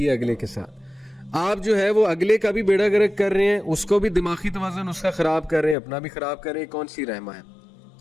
ہے اگلے کے ساتھ؟ آپ جو ہے وہ اگلے کا بھی بیڑا گرک کر رہے ہیں, اس کو بھی دماغی توازن اس کا خراب کر رہے ہیں, اپنا بھی خراب کر رہے ہیں. کون سی رحمہ ہے؟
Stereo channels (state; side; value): drops out; right; at 5.8 s